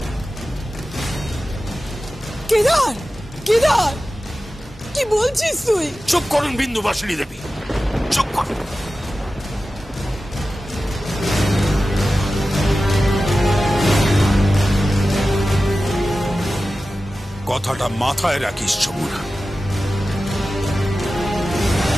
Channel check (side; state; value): both; normal; correlation 0.94